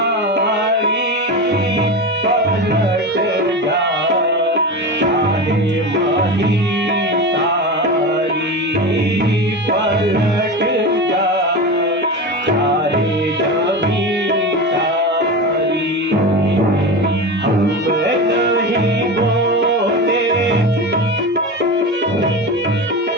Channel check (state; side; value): normal; both; correlation 0.24